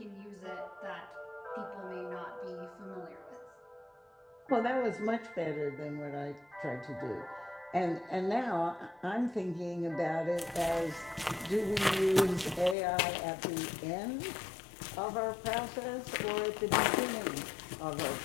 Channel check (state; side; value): drops out; right; at 12.8 s